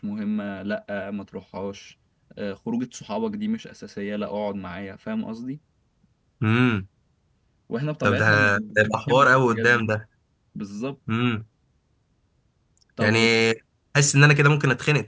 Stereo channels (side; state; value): both; identical; correlation 1.00